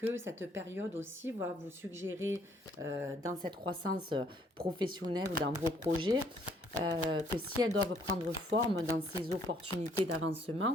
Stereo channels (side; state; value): both; normal; correlation 0.65